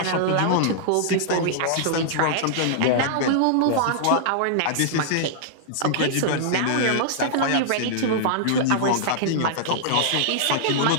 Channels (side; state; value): both; different; correlation -0.01